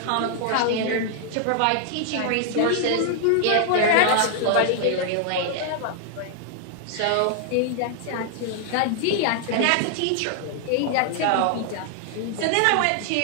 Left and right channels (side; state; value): both; different; correlation 0.00